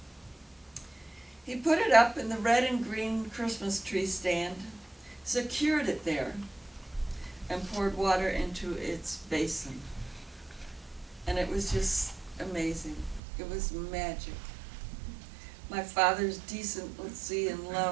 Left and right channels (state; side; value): drops out; left; at 13.2 s